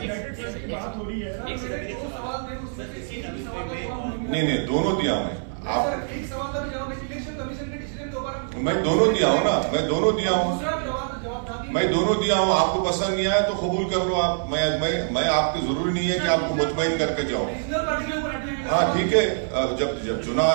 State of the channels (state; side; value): silent; left; 62 dB below the other